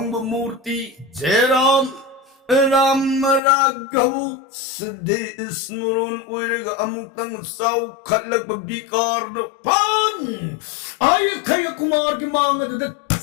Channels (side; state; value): right; drops out; at 3.4 s